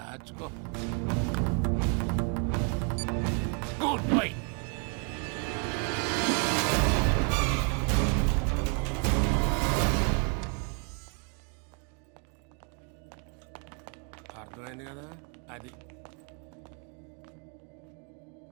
Goodbye. అర్థమైంది కదా? అది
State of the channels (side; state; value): left; quieter; 37.6 dB